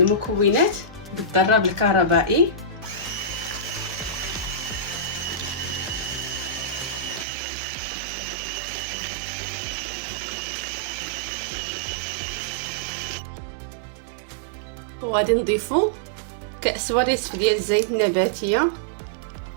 بالضراب الكهربائي. وغادي نضيفوا كأس ونصف ديال الزيت النباتيه،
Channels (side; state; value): left; drops out; at 7.2 s